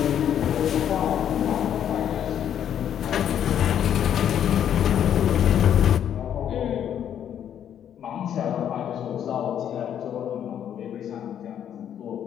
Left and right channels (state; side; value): quieter; right; 9.6 dB